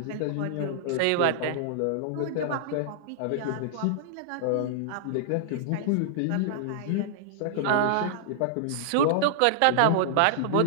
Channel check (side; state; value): both; different; correlation -0.01